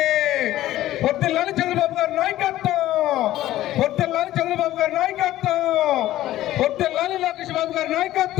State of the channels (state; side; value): quieter; right; 14.5 dB